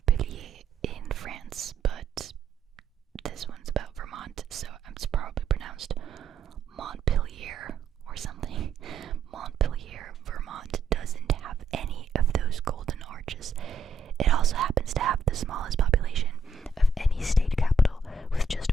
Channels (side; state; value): left; quieter; 3.8 dB